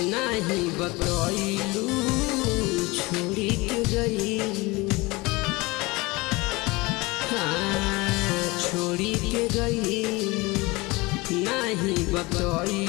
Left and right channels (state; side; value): quieter; right; 23.2 dB